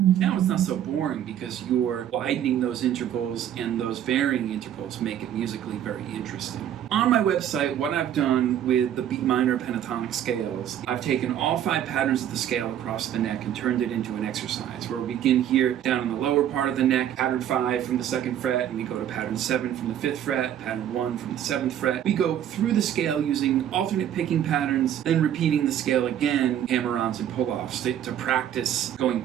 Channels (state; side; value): quieter; left; 10.5 dB